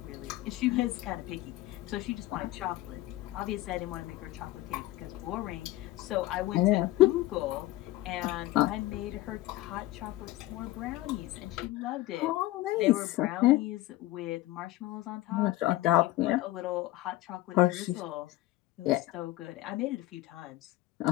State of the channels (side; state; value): right; quieter; 16.7 dB